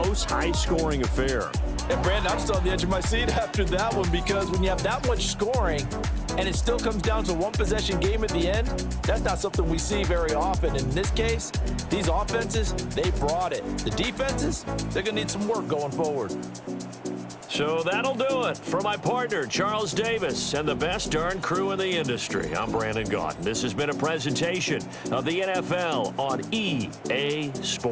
high-scoring affair. And, Brandon, I'm still on the edge of my seat after that one because when you have that much scoring and it still comes down to one-possession game at the end, that's not something we see very often. In this case, these offenses, they brought it. The defenses, they're going to need some work going forward. So that'll do it for my partner, Charles Davis, and the best darn crew in the industry. I'm Brandon Gaudin. This has been a presentation of the NFL on EA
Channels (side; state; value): both; identical; correlation 1.00